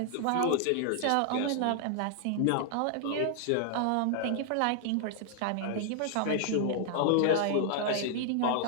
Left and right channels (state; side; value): different; both; correlation 0.00